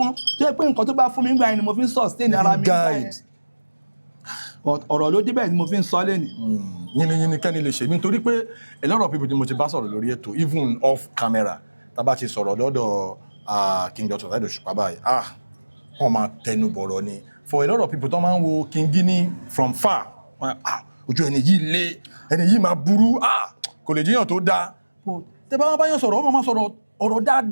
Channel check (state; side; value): inverted; both; correlation -1.00